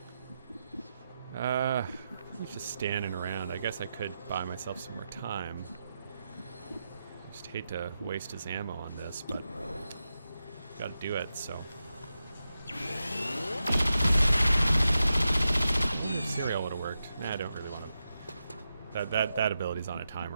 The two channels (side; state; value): both; inverted; correlation -0.89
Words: He's just standing around. I guess I could buy myself some more time. Just hate to waste his ammo on this, but gotta do it, so. Serial would have worked. Nah, I don't really want to. That ability's on a